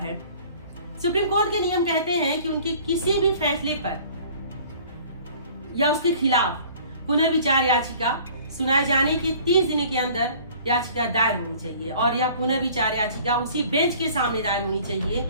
सुप्रीम कोर्ट के नियम कहते हैं कि उनके किसी भी फैसले पर या उसके खिलाफ पुनर्विचार याचिका सुनाए जाने के 30 दिन के अंदर याचिका दायर होनी चाहिए और यह पुनर्विचार याचिका उसी बेंच के सामने दायर होनी चाहिए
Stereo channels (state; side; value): inverted; both; correlation -0.50